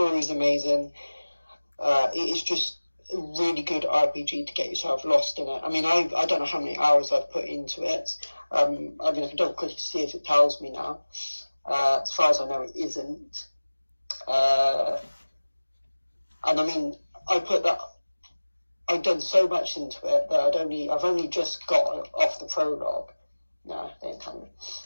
is amazing. It is just a really good RPG to get yourself lost in it. I mean, I don't know how many hours I've put into it. I mean, I can double click to see if it tells me now. As far as I know, it isn't. And I mean, I've done so much into it that I've only just got off the prologue. No, they ain't telling me.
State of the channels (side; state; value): both; inverted; correlation -1.00